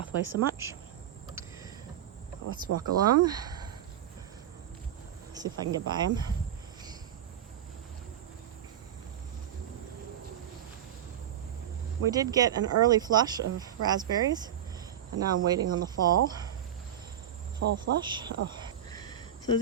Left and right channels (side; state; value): left; quieter; 10.1 dB